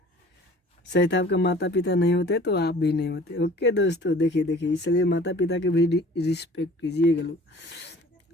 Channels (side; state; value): both; normal; correlation 0.48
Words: शायद आपका माता पिता नहीं होते तो आप भी नहीं होते। ओके दोस्तों, देखिए इसलिए माता पिता के भी रिस्पेक्ट कीजिएगा लोग।